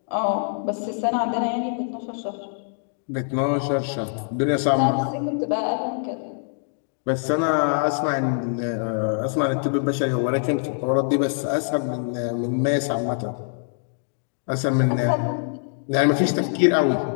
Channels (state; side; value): silent; right; digital silence